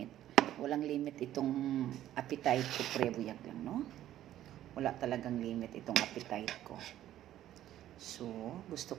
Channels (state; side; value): quieter; left; 12.6 dB